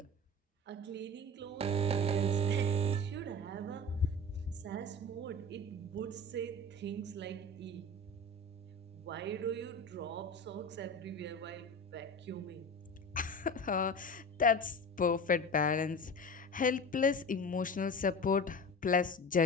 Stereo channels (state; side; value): normal; both; correlation 0.32